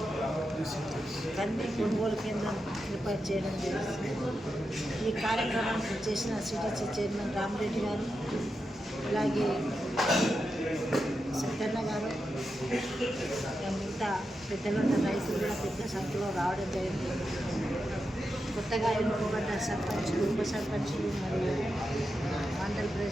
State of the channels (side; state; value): both; normal; correlation 0.88